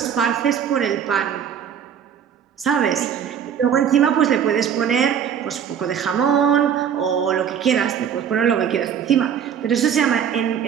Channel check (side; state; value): left; quieter; 8.4 dB